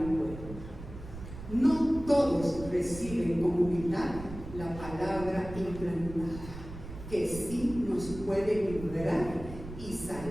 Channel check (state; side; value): noise; right; rumble, 12 dB below the sound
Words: puerta. No todos reciben con humildad la palabra implantada, que sí nos puede librar y